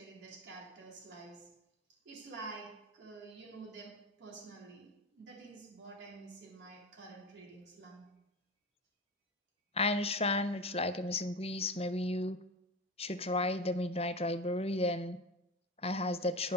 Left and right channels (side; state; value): both; normal; correlation 0.25